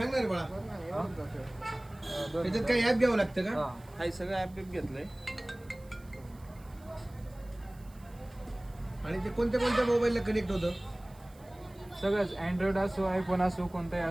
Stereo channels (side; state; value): right; noise; hiss, 27 dB below the sound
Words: बाळा. त्याच्यात काही ऍप घ्यावं लागतं का? काही सगळं ऍप घेतलंय. आणि ते कोणत्या कोणत्या मोबाईलला कनेक्ट होतं? सगळंच अँड्रॉइड असो आयफोन असो कोणताही